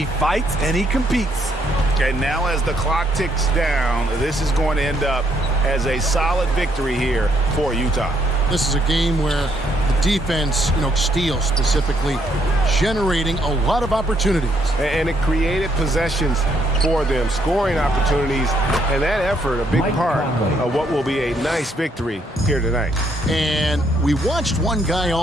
fights and he competes. And now as the clock ticks down, this is going to end up as a solid victory here for Utah. This is a game where the defense, steals specifically, generating a lot of opportunities. And it created possessions for them, scoring opportunities, and that effort, a big part of what will be a nice victory here tonight. And we watched one guy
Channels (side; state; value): both; normal; correlation 0.72